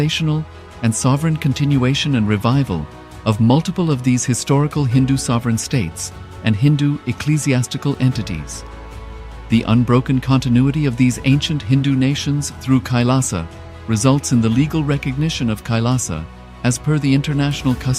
and sovereign continuation and revival of multiple of these historical Hindu sovereign states and Hindu ecclesiastical entities. The unbroken continuity of these ancient Hindu nations through KAILASA results in the legal recognition of KAILASA as per the international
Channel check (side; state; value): both; identical; correlation 1.00